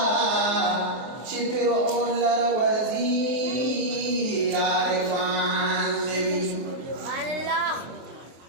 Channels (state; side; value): late; left; 23 ms